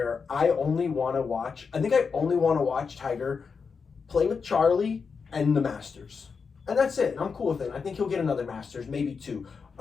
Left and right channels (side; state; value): right; quieter; 5.5 dB